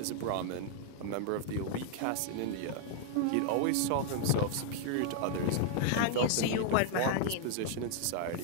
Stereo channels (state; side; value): different; both; correlation 0.00